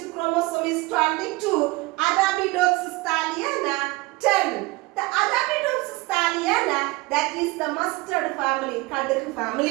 chromosome is 22. Arabidopsis thaliana 10. The Arabidopsis thaliana, that is the mustard family, kaduk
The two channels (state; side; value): quieter; left; 22.5 dB